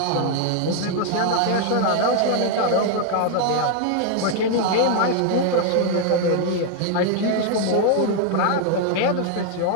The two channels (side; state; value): both; different; correlation 0.00